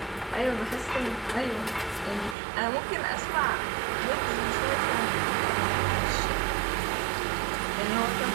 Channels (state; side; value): drops out; left; at 2.4 s